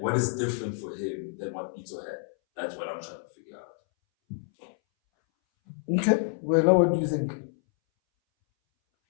is different for him than what Pito had? That's what I'm trying to figure out. Okay. Well, now what do you think?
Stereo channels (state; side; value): silent; right; 59 dB below the other